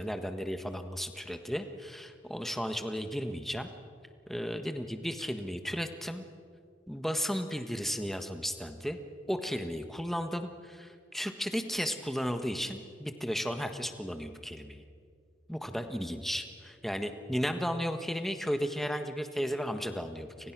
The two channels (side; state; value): both; normal; correlation 0.91